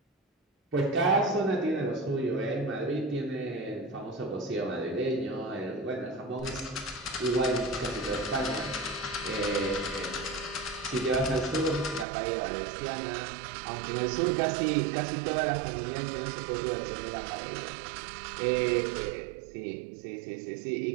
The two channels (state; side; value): drops out; left; at 12.1 s